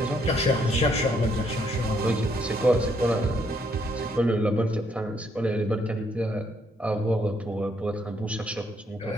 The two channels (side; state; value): both; normal; correlation 0.71